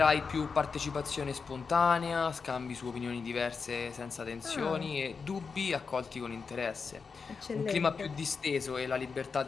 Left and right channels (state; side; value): quieter; right; 5.2 dB